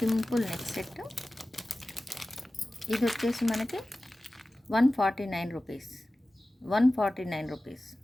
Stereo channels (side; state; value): both; normal; correlation 0.96